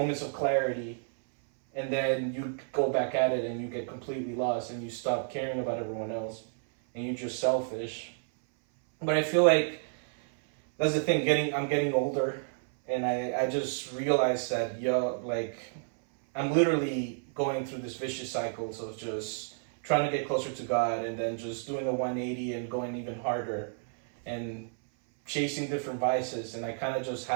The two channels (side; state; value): left; silent; 57 dB below the other